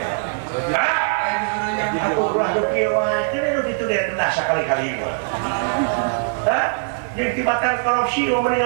Hah? Aku ulah do kieu wae teh nu ditu dia kendah sakali-kali mah. Hah? Jeung tibatan korupsi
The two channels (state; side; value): silent; left; 57 dB below the other